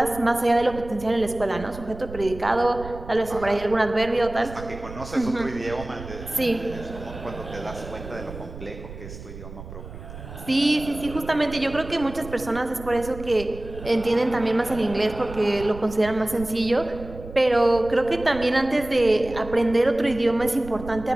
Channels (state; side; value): noise; right; rumble, 13 dB below the sound